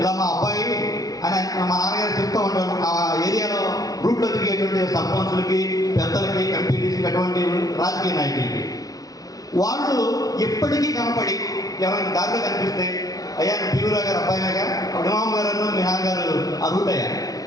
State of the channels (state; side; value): late; right; 0.17 ms